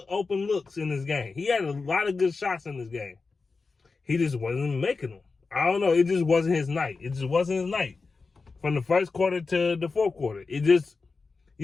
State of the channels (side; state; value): right; quieter; 4.2 dB